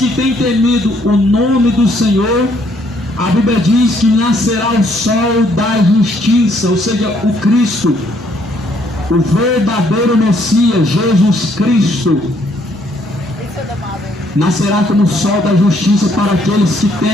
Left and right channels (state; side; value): normal; both; correlation 0.68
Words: têm temido o nome do Senhor, a Bíblia diz que nascerá o sol da justiça, ou seja, o Cristo, o verdadeiro Messias, Jesus Cristo, nascerá como o sol da justiça para aqueles que